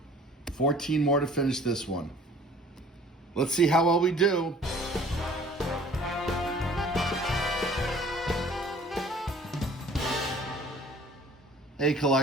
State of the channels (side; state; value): both; normal; correlation 0.51